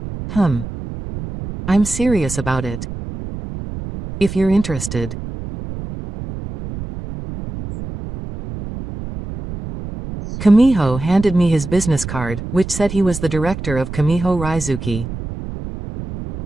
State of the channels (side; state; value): right; noise; rumble, 9 dB below the sound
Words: I'm serious about it. If you're interested. Kamiho handed me his business card, which said he was the director of Kamiho Raizuki.